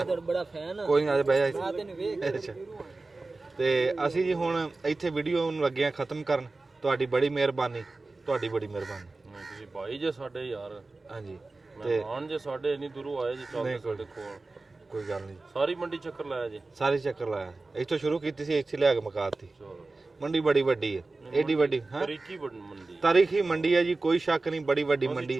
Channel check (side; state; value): left; quieter; 3.4 dB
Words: ਬੜਾ ਫੈਨ ਕੋਈ ਨਹੀਂ, ਆ ਜਾ ਬਹਿ ਜਾ। ਅੱਛਾ ਤੇ ਅਸੀਂ ਜੀ ਹੁਣ ਇੱਥੇ ਵੀਡੀਓ ਨੂੰ ਲੱਗੇ ਆ ਖਤਮ ਕਰਨ। ਤੁਹਾਡੀ ਬੜੀ ਮਿਹਰਬਾਨੀ, ਤੁਹਾਡੀ ਬੜੀ ਮਿਹਰਬਾਨੀ। ਤੁਸੀਂ ਭਾਈ ਜੇ ਸਾਡੇ ਯਾਰ। ਹਾਂਜੀ ਤੇ ਮਹਿਮਾਨ ਜੇ ਸਾਡੇ ਇੰਨੀ ਦੂਰੋਂ ਆਏ ਜੀ, ਚੱਲਦੇ ਸਾਡੇ ਕੋਲ। ਕੋਈ ਗੱਲ ਨਹੀਂ, ਸਾਰੀ ਮੰਡੀ ਚੱਕਰ ਲਾਇਆ ਜੀ। ਸਾਰੀ ਚੱਕਰ ਲਾਇਆ। ਇੱਥੋਂ ਸ਼ੁਰੂ ਕੀਤੀ ਸੀ, ਇੱਥੇ ਲਿਆ ਕੇ ਮੁਕਾਤੀ। ਮੰਡੀ ਬੜੀ ਵੱਡੀ ਹੈ, ਏਡੀ ਵੱਡੀ। ਹਾਂ ਤਾਰੀਖੀ ਮੰਡੀ, ਤਾਰੀਖੀ ਮੰਡੀ ਹੈ ਜੀ, ਕੋਈ ਸ਼ੱਕ ਨਹੀਂ। ਬੜੀ ਵੱਡੀ ਮੰਡੀ।